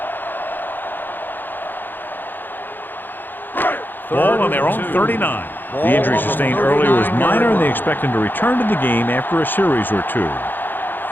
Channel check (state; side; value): late; right; 0.092 ms